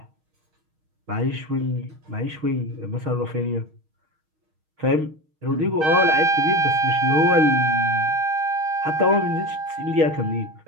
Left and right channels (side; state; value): left; late; 6.4 ms